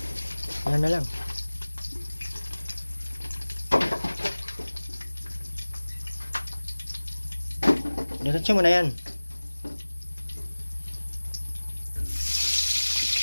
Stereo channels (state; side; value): inverted; both; correlation -1.00